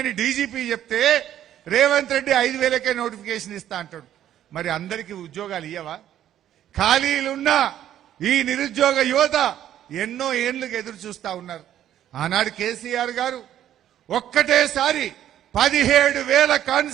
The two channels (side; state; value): left; quieter; 11.4 dB